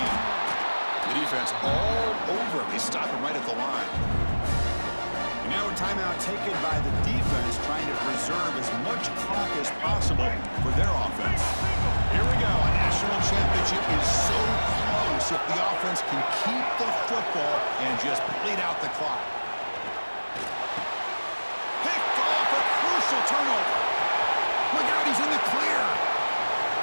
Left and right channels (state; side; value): inverted; both; correlation -1.00